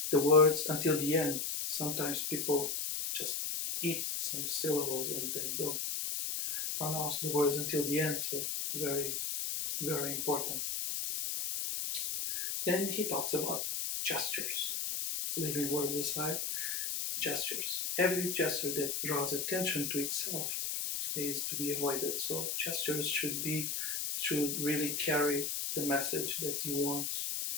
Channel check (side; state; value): left; noise; hiss, 1 dB below the sound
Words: the words until the end. Sometimes people just eat some syllables and they don't pronounce the words until the end, so very, very important. Then he talks about gestures, leaving words aside, gestures. Every gesture that draws attention to itself is to be avoided. So gestures should really carry the message that you want